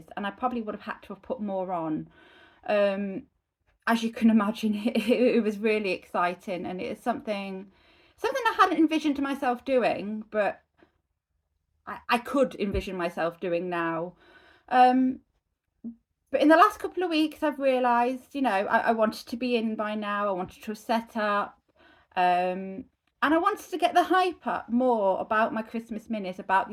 and I probably would have had to have put more on. Um, as you can imagine, it was really exciting, and it's something I hadn't envisioned myself doing, but I could envision myself doing now. Um, but in the last couple of weeks, I've realised, I wanted to be in by now. I wanted to set up, and I wanted to get the hype up more about my Christmas minis, about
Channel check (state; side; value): identical; both; correlation 1.00